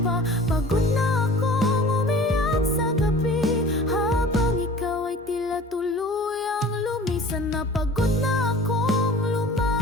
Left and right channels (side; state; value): both; normal; correlation 0.43